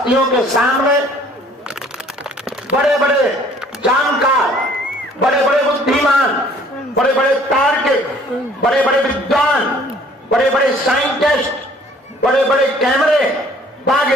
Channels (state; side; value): normal; both; correlation 0.56